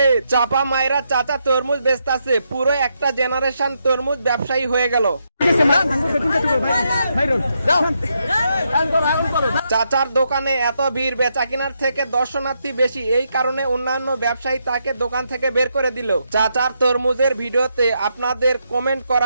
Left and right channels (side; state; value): both; inverted; correlation -0.80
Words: চাপা মায়েরা চাচা তরমুজ বেচতাছে, পুরো একটা জেনারেশন তরমুজ ব্যবসায়ী হয়ে গেল। চাচার দোকানে এত ভিড়, বেচা কেনার থেকে দর্শনার্থী বেশি, এই কারণে অন্যান্য ব্যবসায়ী তাকে দোকান থেকে বের করে দিল। চাচার তরমুজের ভিডিওতে আপনাদের কমেন্ট